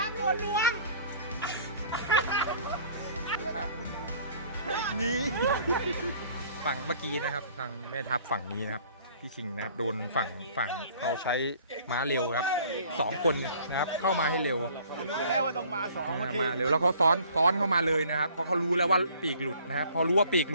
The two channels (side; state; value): both; inverted; correlation -0.53